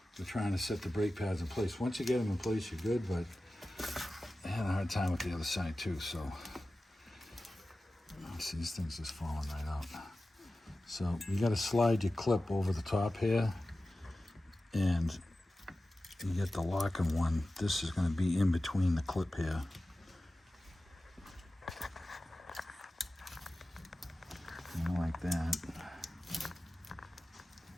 we're trying to set the brake pads in place. Once you get them in place, you're good, but I had a hard time with the other side too, so. See, these things just falling right out. So you gotta slide your clip over the top here, and you get the locking one. This is gonna be in between the clip here. Like that.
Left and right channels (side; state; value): both; normal; correlation 0.95